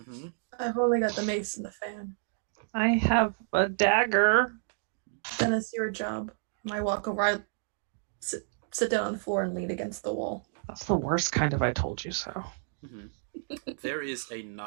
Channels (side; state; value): left; silent; digital silence